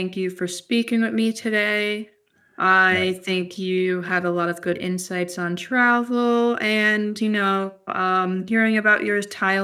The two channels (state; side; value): identical; both; correlation 1.00